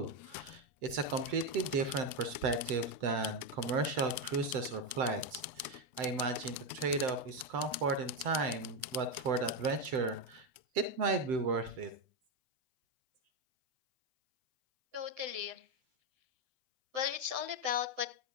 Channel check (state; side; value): late; left; 7.8 ms